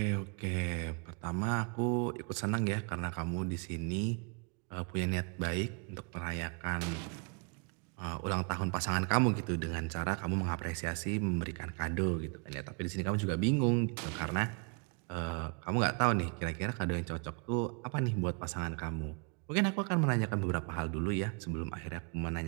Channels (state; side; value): quieter; left; 36.6 dB